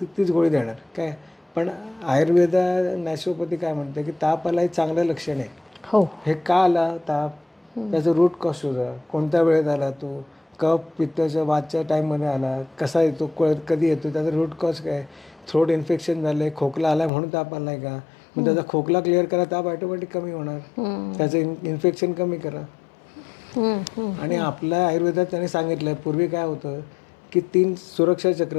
गोळी देणार काय. पण आयुर्वेदा नॅचरोपॅथी काय म्हणते की ताप आला हे चांगलं लक्षण आहे. हो. हे का आला ताप, त्याचं रूट कॉज शोधा, कोणत्या वेळेत आला तो, कफ पित्ताच्या वादच्या टाईममध्ये आला, कसा येतो, कधी येतो, त्याचा रूट कॉज काय, थ्रोट इन्फेक्शन झालं आहे, खोकला आला म्हणून ताप आला आहे का, मग त्याचा खोकला क्लिअर करा, ताप ऑटोमॅटिक कमी होणार, त्याचं इन्फेक्शन कमी करा. आणि आपल्या आयुर्वेदात त्यांनी सांगितलं पूर्वी काय होतं की 3 सुरक्षा चक्र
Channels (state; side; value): drops out; right; at 17.1 s